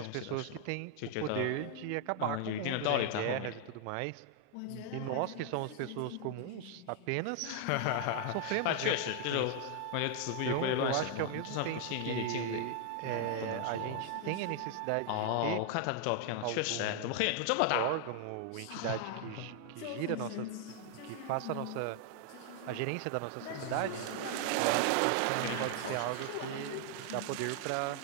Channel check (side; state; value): both; different; correlation 0.00